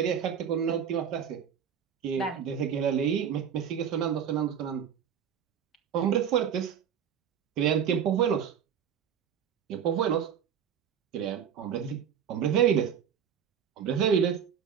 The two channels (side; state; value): left; quieter; 8.2 dB